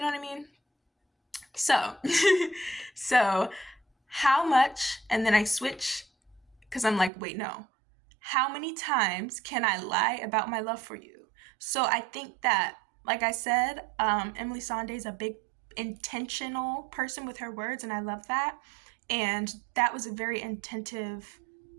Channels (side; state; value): left; drops out; at 7.1 s